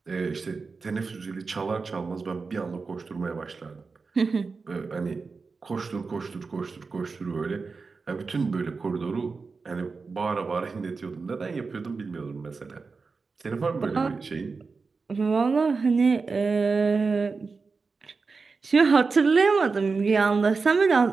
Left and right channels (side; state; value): left; quieter; 4.5 dB